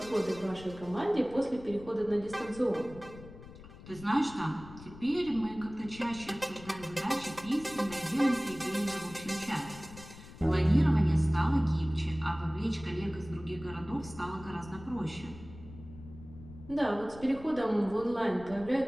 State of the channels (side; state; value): left; noise; rumble, 17 dB below the sound